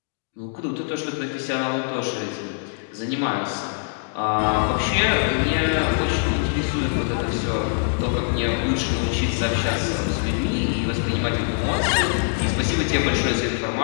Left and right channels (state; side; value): silent; right; digital silence